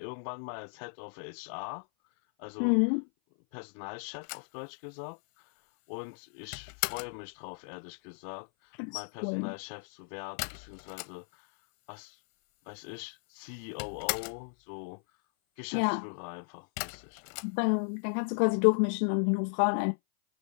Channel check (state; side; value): silent; right; 55 dB below the other